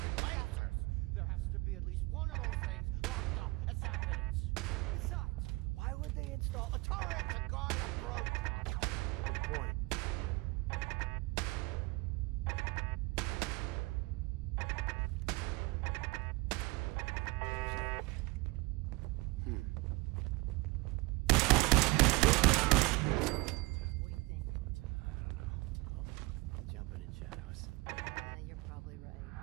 and lancers! There has to be at least one of those things locked up as evidence. Besides, why would they install a turret to guard a broke? Good point. What do you think? Huh? Jumping in shadows. You're probably right.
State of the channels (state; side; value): quieter; left; 23.6 dB